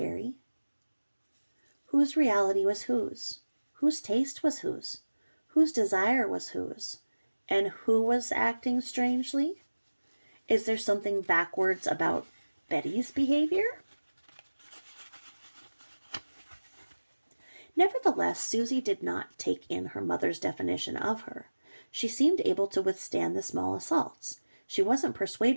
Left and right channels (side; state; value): both; inverted; correlation -1.00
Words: Whose reality was whose? Whose taste was whose? Whose desire was whose? And who was acting strangely? Is there something backwards about Betty's behavior? Nevertheless, Susie did not take in her mother's definition of her. She seemed able to withstand the small assaults. She wasn't